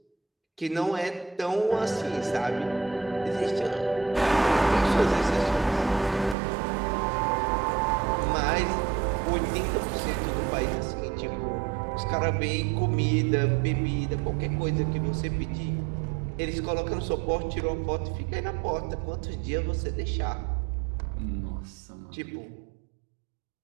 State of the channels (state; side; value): drops out; left; at 6.4 s